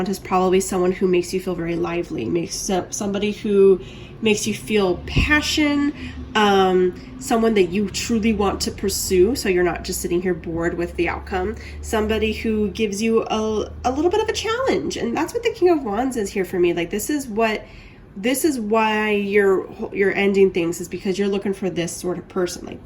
is probably someone who makes you feel very lively, somebody who makes you feel passion, someone that you truly want to pursue, so you're not just sitting here bored with the outcome. Somebody who gives you a little bit of a challenge, and that's what the King of Wands is here for me. Like, this is why you're ending things, is because you're looking for this sort of person.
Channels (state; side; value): identical; both; correlation 1.00